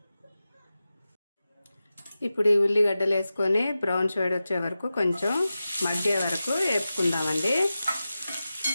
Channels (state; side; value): inverted; both; correlation -0.93